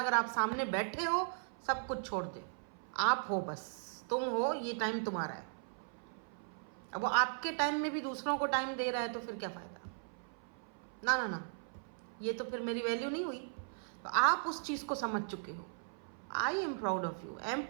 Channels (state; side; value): silent; left; 53 dB below the other